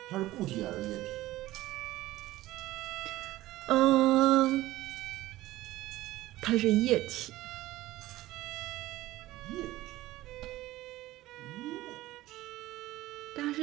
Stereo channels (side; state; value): left; quieter; 16.7 dB